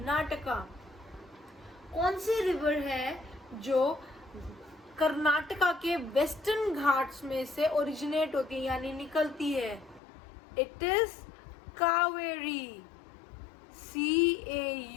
कौन सी रिवर है जो कर्नाटका के वेस्टर्न घाट्स में से ओरिजिनेट होती है यानी निकलती है? It is Cauvery,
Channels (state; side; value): drops out; right; at 10.0 s